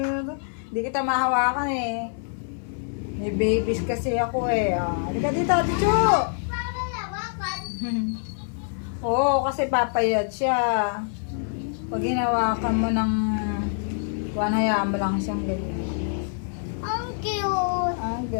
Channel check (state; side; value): silent; right; 59 dB below the other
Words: Hindi kita mahawakan eh. May babies kasi ako eh. Ah, halika dito, Chuchu! Oo, kasi papayat siya. Pag hinawakan mo ng hayaan mo lang siyang ganyan. Ang cute. Ah,